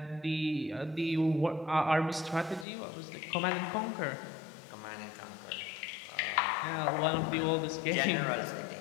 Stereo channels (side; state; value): right; drops out; at 2.7 s